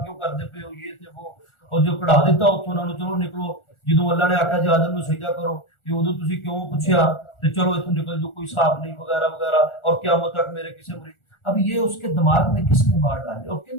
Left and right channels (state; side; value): late; right; 1.4 ms